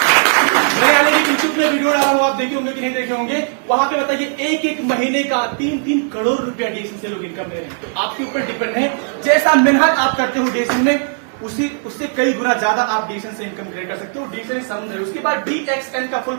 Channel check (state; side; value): silent; left; digital silence